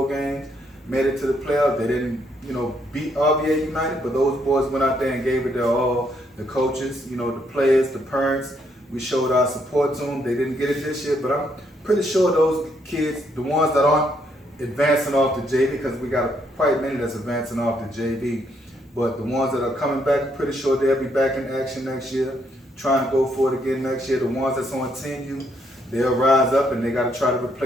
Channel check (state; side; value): normal; both; correlation 0.73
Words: games, made it to the playoffs. They didn't, you know, beat RBA United, but those boys went out there and gave it their all. The coaches, you know, the players, the parents, we showed our support to them. They didn't get it this year, but I'm pretty sure those kids, the ones that aren't advancing off the JV, because we got quite many that's advancing off the JV, but the ones that are coming back, I'm pretty sure they'll be back in action next year, trying to go for it again next year. The ones that's on Team U, they'll rise up and they got to try to